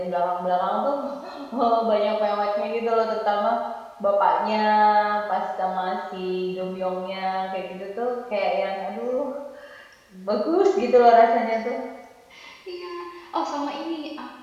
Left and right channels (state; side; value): identical; both; correlation 1.00